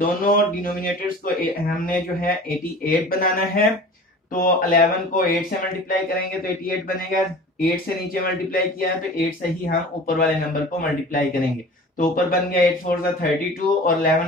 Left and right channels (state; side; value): normal; both; correlation 0.40